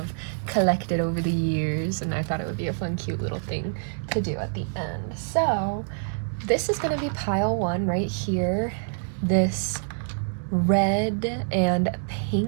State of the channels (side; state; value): left; silent; 61 dB below the other